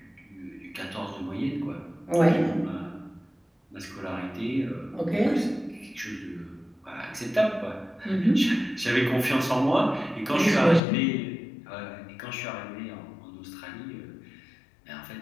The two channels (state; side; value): drops out; right; at 10.8 s